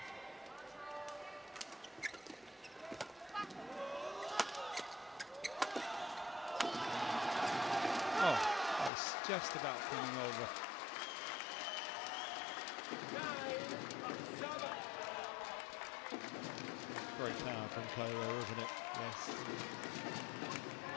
Oh, that was just about coming over. Great power from Kuala, wasn't it? Yes.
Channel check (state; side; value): drops out; right; at 8.9 s